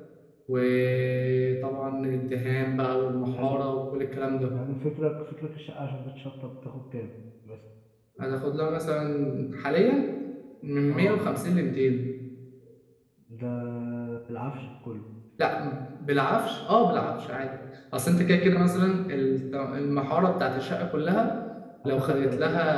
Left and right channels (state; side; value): identical; both; correlation 1.00